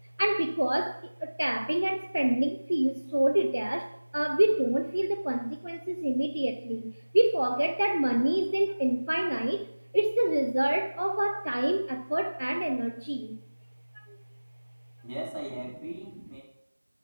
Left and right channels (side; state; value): both; inverted; correlation -1.00